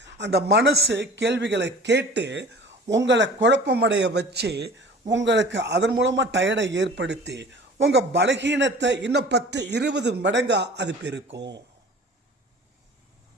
அந்த மனசு கேள்விகளை கேட்டு உங்களை குழப்பமடைய வச்சு உங்களுக்கு அதன் மூலமாக டயர்டை ஏற்படுத்தி உங்கள் பலகீனத்தை இன்னும் 10-20 மடங்காக அது பெருக்கும்.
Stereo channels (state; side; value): normal; both; correlation 0.43